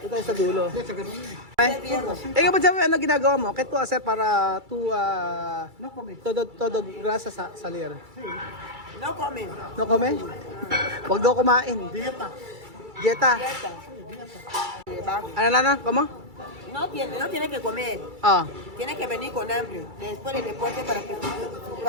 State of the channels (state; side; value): late; left; 2.3 ms